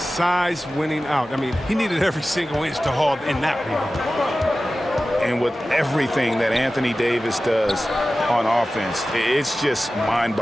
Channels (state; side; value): normal; both; correlation 0.95